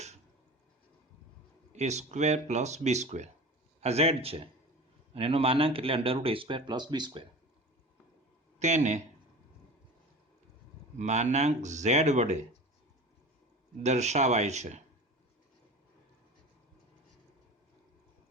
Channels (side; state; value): both; normal; correlation 0.35